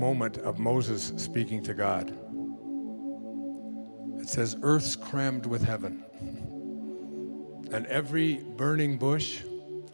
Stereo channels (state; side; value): inverted; both; correlation -1.00